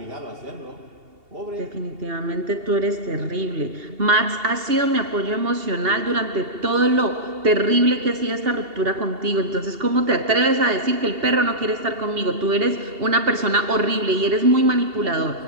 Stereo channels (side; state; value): left; late; 2.8 ms